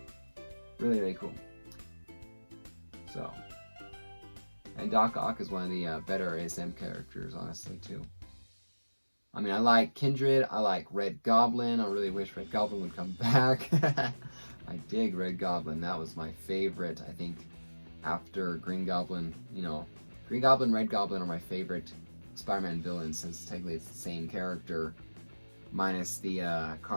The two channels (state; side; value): inverted; both; correlation -1.00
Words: really, really cool. So, and Doc Ock is one of the better ASM characters, honestly, too. I mean, I like Kindred, I like Red Goblin. I really wish Red Goblin would come back. I dig Red Goblin. That was my favorite, I think, after Green Goblin. You know, Green Goblin, Red Goblin are my favorite Spider-Man villains, since technically it's the same character, minus the